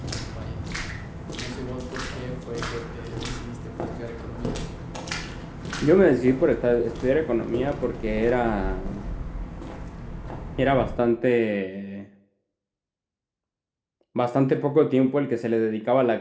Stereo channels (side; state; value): both; identical; correlation 1.00